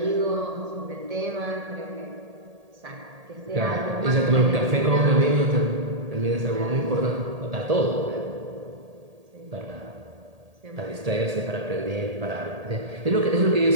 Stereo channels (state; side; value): late; left; 1.8 ms